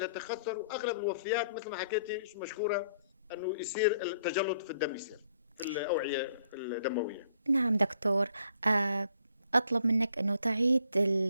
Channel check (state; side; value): inverted; both; correlation -0.66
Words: واغلب الوفيات مثل ما حكيتي مشكوره انه يصير التجلط في الدم، يصير في الاوعيه الدمويه. نعم دكتور. آه، أطلب منك أنه تعيد